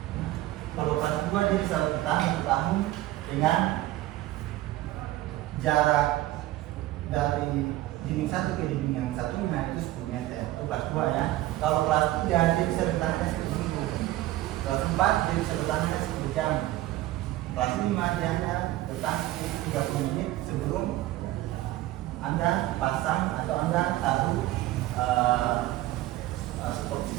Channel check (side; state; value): left; quieter; 16.2 dB